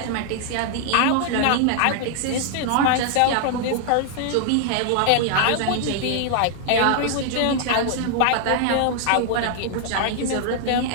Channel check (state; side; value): different; both; correlation 0.00